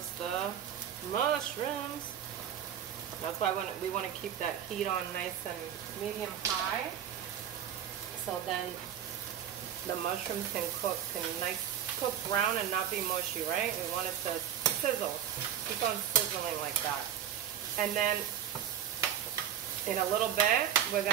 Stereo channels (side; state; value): left; quieter; 9.8 dB